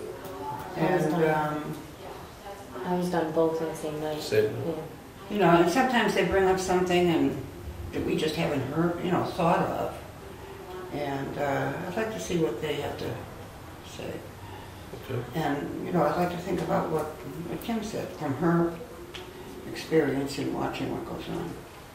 And, I was done both on the same night. Same. Yeah. you know, and sometimes they bring up something and that we just haven't heard, thought of. And I'd like to see what they have to say. Okay. And, I'd like to think about what Kim said from her experience in watching what goes on.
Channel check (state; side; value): identical; both; correlation 1.00